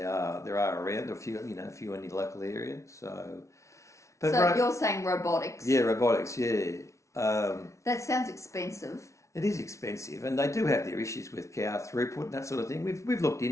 there are around a few in the local area. But you're saying robotics? Yeah, robotics. Yeah. That sounds expensive. It is expensive, and they do have their issues with cow throughput and that sort of thing. We've looked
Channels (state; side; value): late; right; 0.14 ms